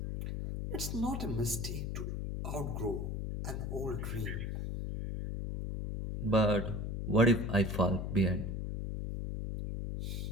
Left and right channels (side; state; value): left; noise; hum, 3 dB below the sound